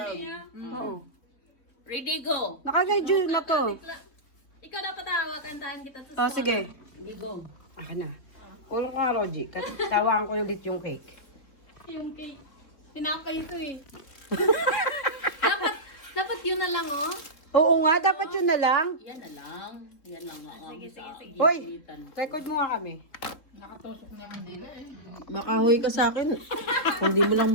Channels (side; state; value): right; late; 3.6 ms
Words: niya. Oo. Ready, go. Naka-radio na to. Ikaw dapat tawa, kantahan kita sa Sige. Okay, go. Akin na. Ulong ka, Roji. Tawaan ko ulit yung cake. Yung cake. Tinapay ito eh. dapat yun na lang oh. Oo nga, dapat yun na lang. Yan na lang. Yan lang nga. Sige, sige. Hoy, record mo nga kami. Nakatusok na yung dila eh. Makahoy ka sa akin. Kung di mo lang